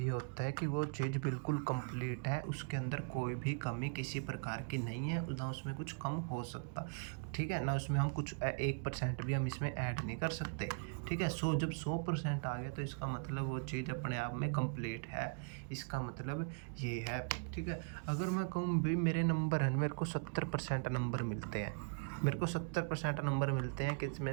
होता है कि वो चीज़ बिल्कुल कंप्लीट है, उसके अंदर कोई भी कमी किसी प्रकार की नहीं है, ना उसमें कुछ कम हो सकता। ठीक है, ना उसमें हम कुछ 1% भी हम इसमें ऐड नहीं कर सकते। ठीक है, जब 100% आ गया तो इसका मतलब वो चीज़ अपने आप में कंप्लीट है। इसका मतलब ये है। ठीक है, अगर मैं कहूँ भाई मेरे नंबर हैं, मेरे को 70% नंबर मिलते हैं, मेरे को 70% नंबर मिलते हैं किस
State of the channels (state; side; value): quieter; left; 38.6 dB